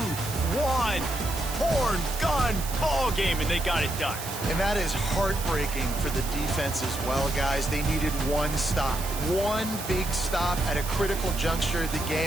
1, horn, gun, ball game, and they got it done. And that is heartbreaking for the defense as well, guys. They needed one stop, one big stop at a critical juncture of the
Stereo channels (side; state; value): right; noise; hiss, 9 dB below the sound